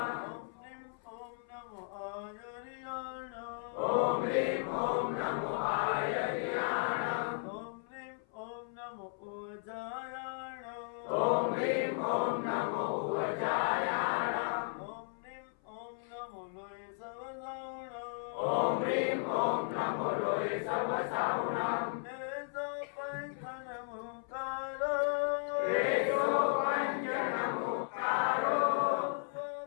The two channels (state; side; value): silent; right; 54 dB below the other